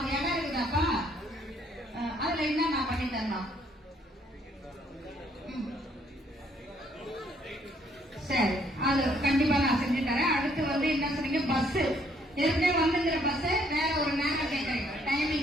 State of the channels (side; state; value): both; normal; correlation 0.66